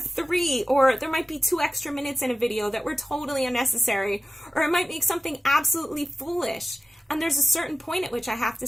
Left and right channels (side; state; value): both; normal; correlation 0.96